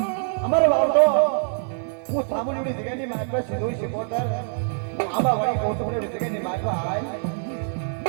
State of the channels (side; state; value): left; silent; digital silence